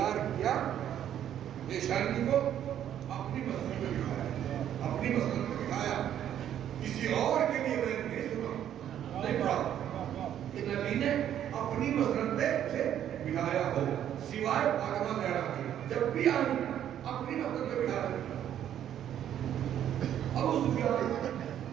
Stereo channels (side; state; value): left; quieter; 10.5 dB